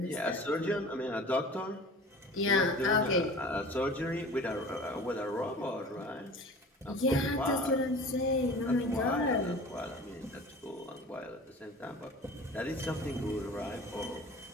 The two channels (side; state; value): both; normal; correlation 0.41